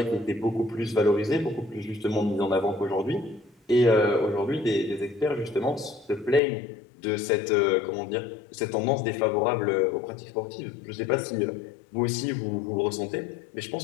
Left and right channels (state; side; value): drops out; right; at 6.4 s